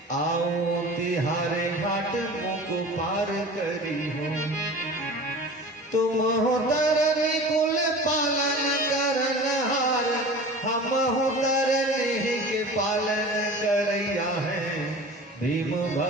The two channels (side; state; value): both; normal; correlation 0.38